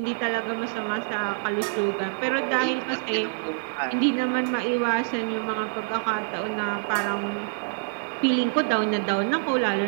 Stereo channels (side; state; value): left; silent; digital silence